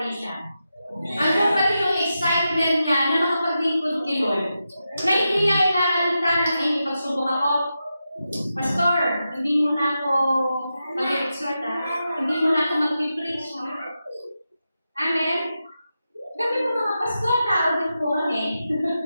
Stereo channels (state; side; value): inverted; both; correlation -0.89